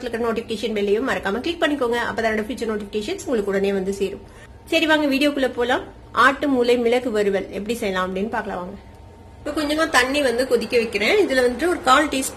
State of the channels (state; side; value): identical; both; correlation 1.00